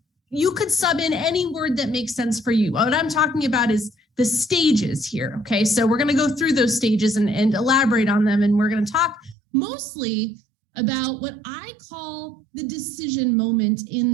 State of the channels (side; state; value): left; drops out; at 9.3 s